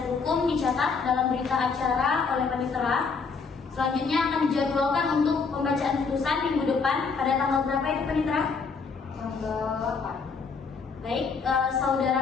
hukum dicatat dalam berita acara oleh panitera. Selanjutnya akan dijadwalkan untuk pembacaan putusan minggu depan pada tanggal berapa itu panitera? Tanggal 8. Baik,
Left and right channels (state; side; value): quieter; right; 5.0 dB